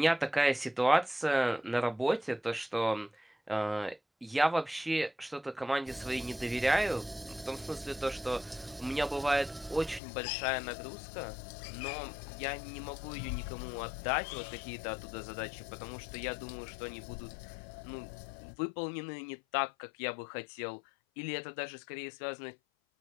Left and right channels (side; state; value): right; drops out; at 10.0 s